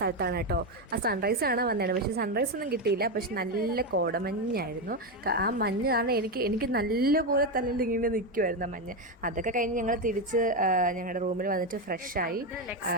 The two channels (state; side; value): normal; both; correlation 0.10